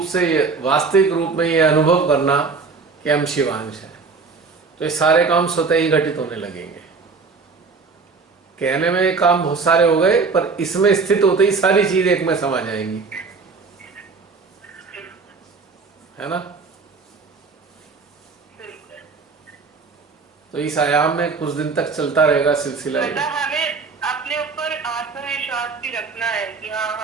से वास्तविक रूप में ये अनुभव करना कि हम शिवांश हैं, तो ये सारे काम स्वतः ही घटित होने लगेंगे। कहने में काम बहुत सारे हो गए, पर इसमें स्थित होते ही सारी चीज एक में समा जाएंगी, है ना। तो इस आयाम में कुछ दिन तक चलता रहेगा सिलसिला। मतलब हमें अपने ऊपर आत्मविश्वास भी रखना है कि हाँ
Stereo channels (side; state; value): left; quieter; 4.6 dB